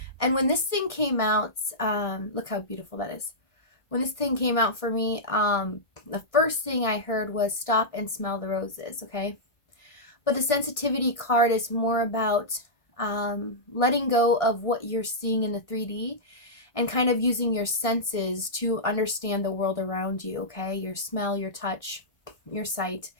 And when this thing came out, look how beautiful that is. When this thing came out for me, the first thing I heard was stop and smell the roses, okay? But the sensitivity card is more about letting go of what you're seeing in the 3D and kind of using your senses to understand the world around you, okay? Your smell, your touch, your sight.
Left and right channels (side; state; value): right; late; 1.6 ms